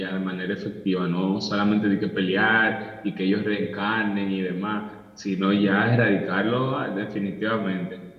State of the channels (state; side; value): identical; both; correlation 1.00